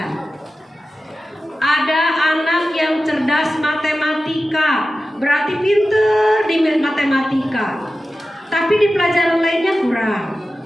Ada anak yang cerdas matematika, berarti pinter di matematika, tapi di pelajaran lainnya kurang.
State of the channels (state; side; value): normal; both; correlation 0.94